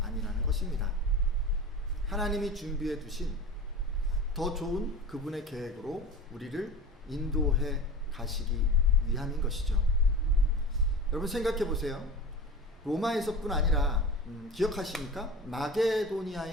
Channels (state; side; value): normal; both; correlation 0.32